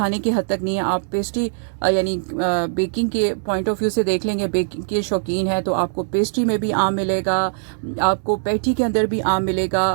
کی حد تک نہیں ہے، آپ پیسٹری یعنی بیکنگ کے پوائنٹ آف ویو سے دیکھ لیں گے، بیکنگ کے شوقین ہے تو آپ کو پیسٹری میں بھی آم ملے گا، آپ کو پیٹی کے اندر بھی آم ملے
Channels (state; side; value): silent; left; digital silence